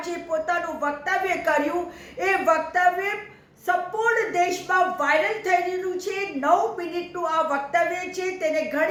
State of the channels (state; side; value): identical; both; correlation 1.00